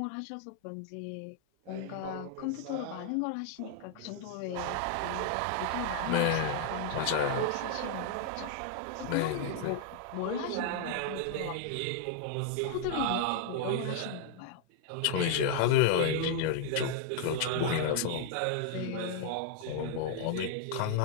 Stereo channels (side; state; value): both; different; correlation -0.01